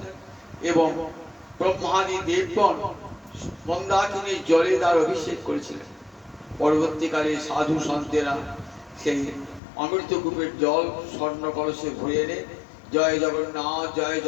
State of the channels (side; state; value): right; drops out; at 9.6 s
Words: এবং ব্রহ্মাদি দেবগণ মন্দাকিনীর জলে তার অভিষেক করেছিলেন। পরবর্তীকালে সাধু সন্তেরা সেই অমৃতকূপের জল স্বর্ণ কলসে ভরে এনে জয়